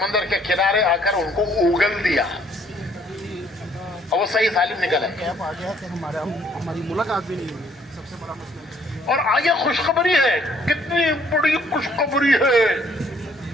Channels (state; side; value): normal; both; correlation 0.64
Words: के किनारे आकर उनको उगल दिया और वो सही सालिम निकला। हमारी मुलाकात भी नहीं हुई, सबसे बड़ा मसला। और आगे खुशखबरी है, कितनी बड़ी खुशखबरी है,